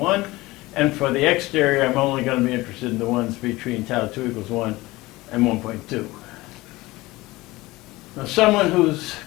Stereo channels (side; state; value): right; quieter; 20.0 dB